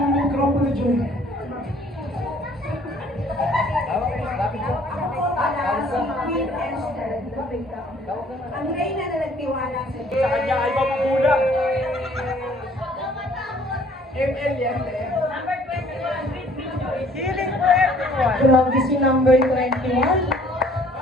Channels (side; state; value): both; normal; correlation 0.57